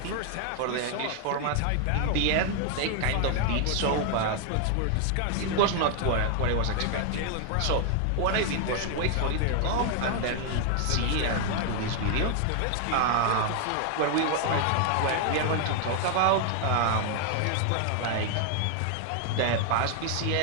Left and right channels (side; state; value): both; different; correlation 0.00